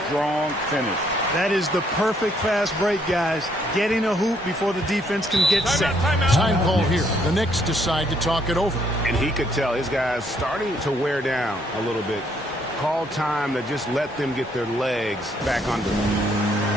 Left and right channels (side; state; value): both; normal; correlation 0.69